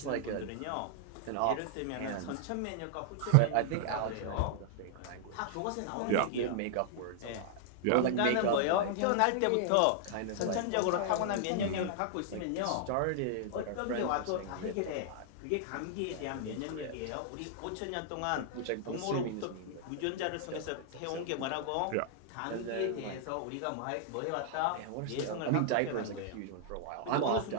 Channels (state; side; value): different; both; correlation -0.01